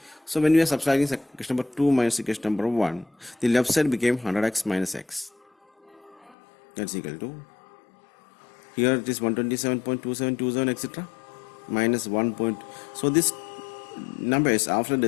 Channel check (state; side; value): drops out; right; at 6.4 s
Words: So when we are subtracting equation number 2 minus equation number 1, the left side became 100x minus x. That's equal to, here it is 127.2727, etc. minus 1 point. So this numbers after